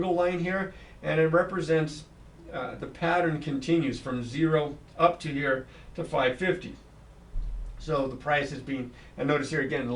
line here, and it represents the pattern continues from 0 up to here to 550. So the price is being, and notice here again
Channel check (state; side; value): identical; both; correlation 1.00